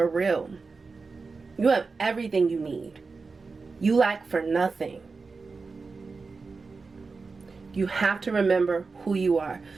real. You have everything you need. You lack for nothing. You have to remember who you are.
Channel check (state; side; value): quieter; left; 4.3 dB